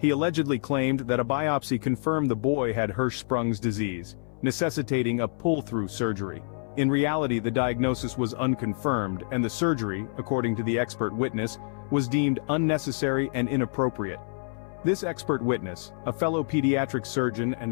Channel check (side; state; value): right; silent; 60 dB below the other